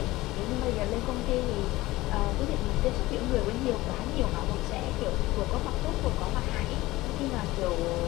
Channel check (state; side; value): quieter; right; 18.6 dB